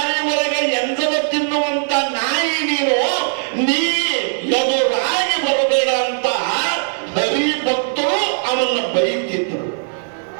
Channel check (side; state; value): left; silent; 65 dB below the other